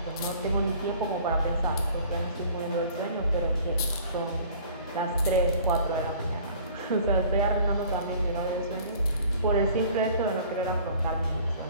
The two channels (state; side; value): inverted; both; correlation -0.50